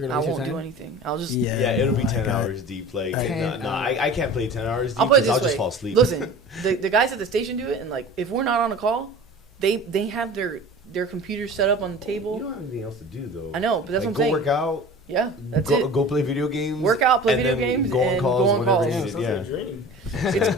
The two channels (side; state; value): both; normal; correlation 0.39